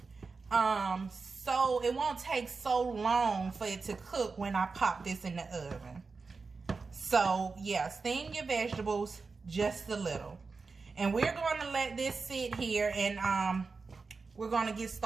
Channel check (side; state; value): left; quieter; 4.4 dB